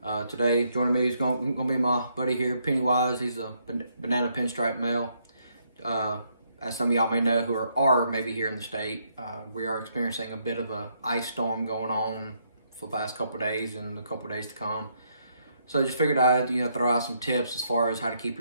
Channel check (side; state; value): both; inverted; correlation -0.74